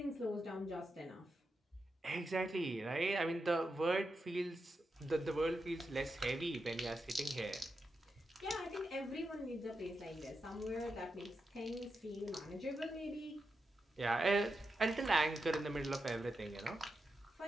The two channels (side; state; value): both; normal; correlation 0.87